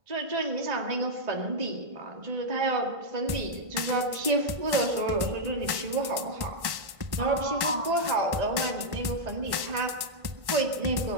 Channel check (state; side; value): late; left; 1.5 ms